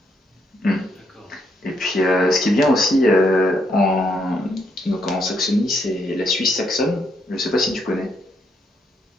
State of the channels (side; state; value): both; normal; correlation 0.75